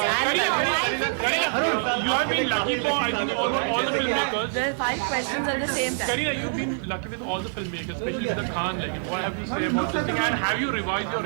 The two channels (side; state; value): left; silent; digital silence